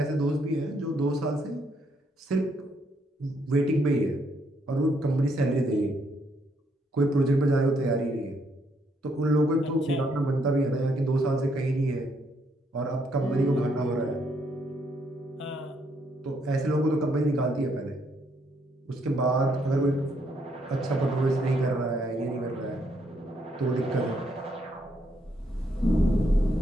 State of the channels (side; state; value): both; normal; correlation 0.73